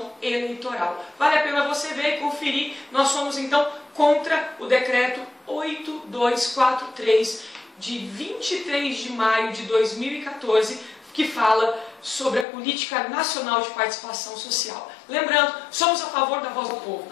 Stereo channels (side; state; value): right; drops out; at 12.5 s